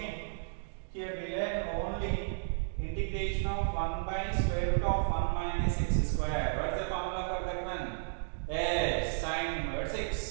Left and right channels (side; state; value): left; silent; digital silence